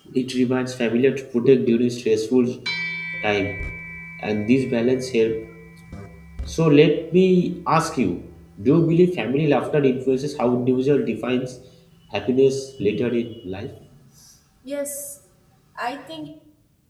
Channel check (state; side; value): identical; both; correlation 1.00